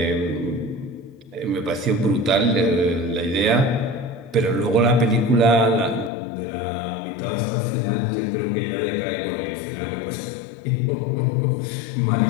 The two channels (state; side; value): drops out; right; at 6.1 s